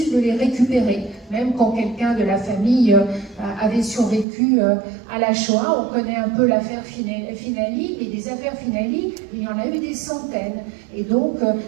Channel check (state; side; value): drops out; left; at 4.2 s